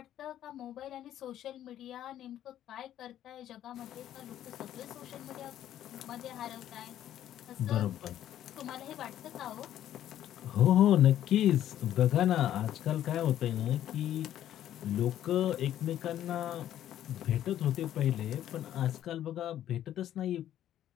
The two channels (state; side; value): quieter; right; 11.7 dB